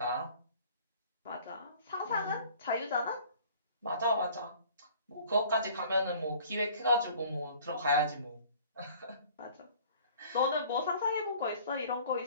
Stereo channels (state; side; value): inverted; both; correlation -0.51